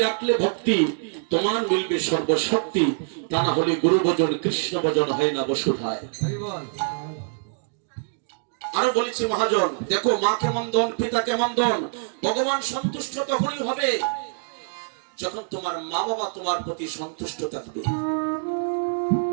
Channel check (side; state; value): left; silent; digital silence